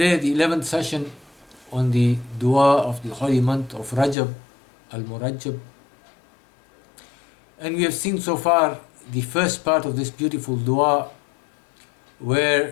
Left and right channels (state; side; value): drops out; right; at 4.2 s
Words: the 11th session on the dua of the holy month of Rajab, al-Murajab. And we have seen so far the first part of this beautiful dua,